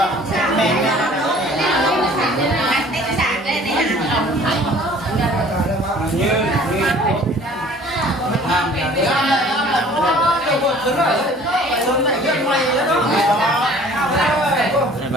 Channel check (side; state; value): both; normal; correlation 0.51